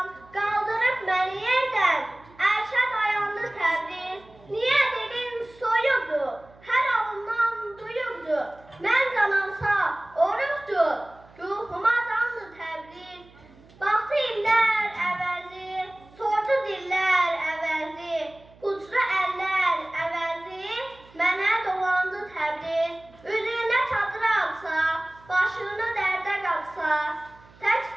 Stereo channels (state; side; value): noise; right; hum, 26 dB below the sound